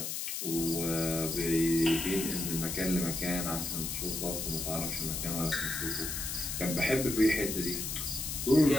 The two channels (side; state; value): left; noise; hiss, 3 dB below the sound